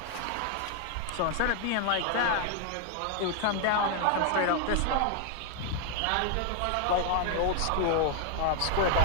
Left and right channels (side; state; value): both; different; correlation 0.00